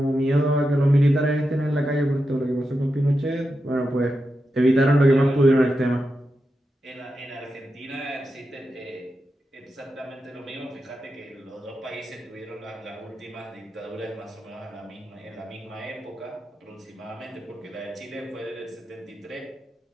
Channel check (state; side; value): normal; both; correlation 0.88